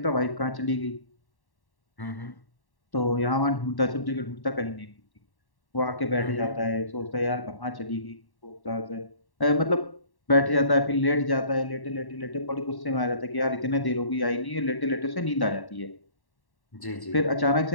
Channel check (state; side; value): late; right; 1.1 ms